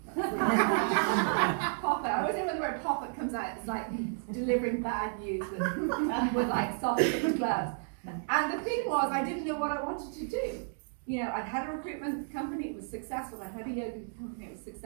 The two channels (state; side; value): silent; left; digital silence